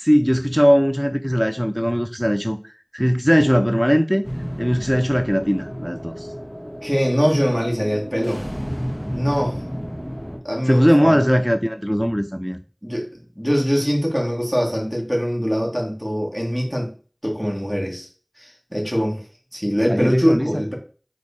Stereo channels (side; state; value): both; identical; correlation 1.00